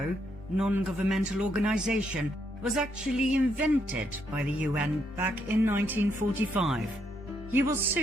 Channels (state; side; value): normal; both; correlation 0.76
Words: non-governmental organization, was actually invented by the UN back in 1945. You will